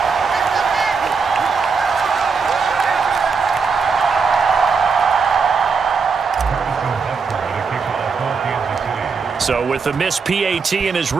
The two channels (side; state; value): left; quieter; 5.2 dB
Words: So with the missed PAT in his